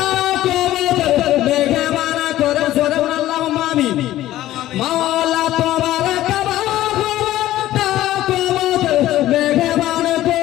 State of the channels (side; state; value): right; quieter; 14.4 dB